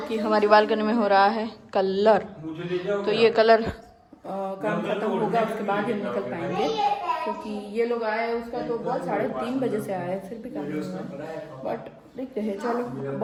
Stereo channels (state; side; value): identical; both; correlation 1.00